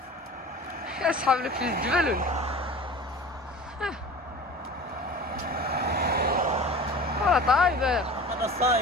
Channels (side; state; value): both; normal; correlation 0.39